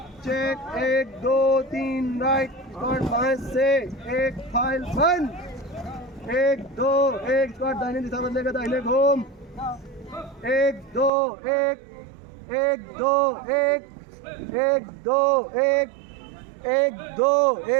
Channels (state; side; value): drops out; left; at 11.1 s